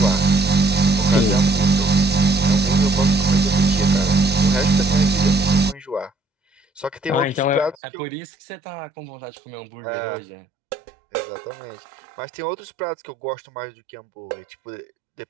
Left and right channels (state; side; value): drops out; left; at 7.8 s